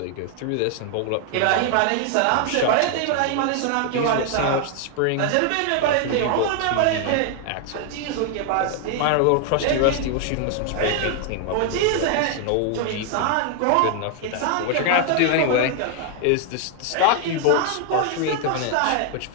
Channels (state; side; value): different; both; correlation 0.00